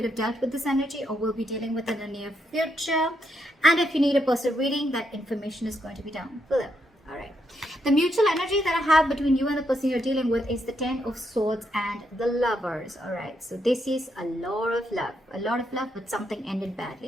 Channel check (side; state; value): both; normal; correlation 0.79